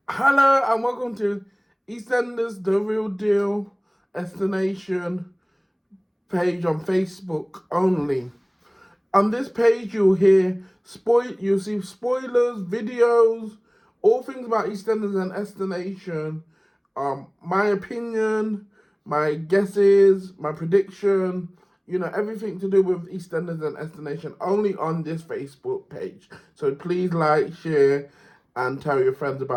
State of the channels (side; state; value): both; identical; correlation 1.00